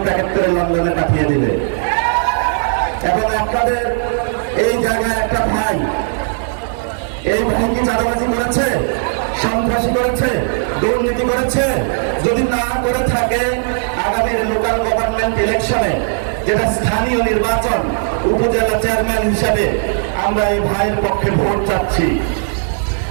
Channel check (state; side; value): silent; left; digital silence